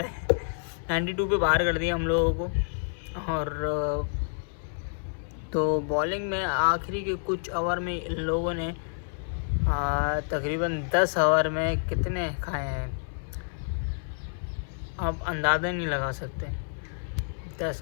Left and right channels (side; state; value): right; silent; 59 dB below the other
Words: 92 पे बाहर कर दिया हम लोगों को। और तो बॉलिंग में आखिरी के कुछ ओवर में इन लोगों ने तकरीबन 10 ओवर में कितने खाए हैं आप अंदाज़ा नहीं लगा सकते।